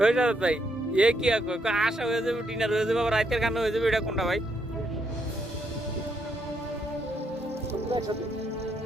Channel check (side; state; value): both; normal; correlation 0.76